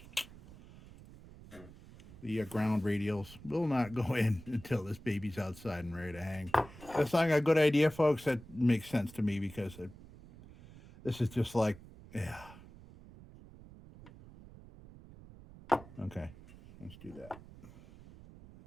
the ground radials will not go in until this baby's outside and ready to hang. That's not a good idea, folks. That makes sense to me because this is just like, yeah. Okay, let's do that.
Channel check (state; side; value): noise; right; rumble, 19 dB below the sound